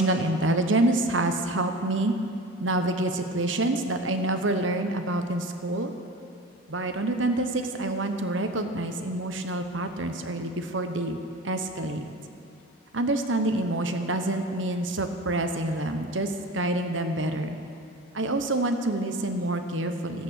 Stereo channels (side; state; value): both; normal; correlation 0.35